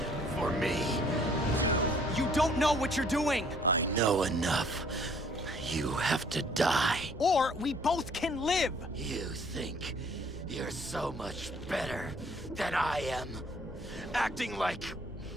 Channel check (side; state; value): both; normal; correlation 0.59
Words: for me. You don't know what you're doing! I know enough. You have to die. Or we both can live! You think you're so much better than I am, acting like